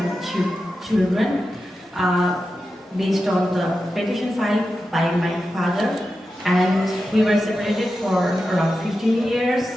children based on the petition filed by my father. And we were separated for around 15 years,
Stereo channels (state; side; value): normal; both; correlation 0.91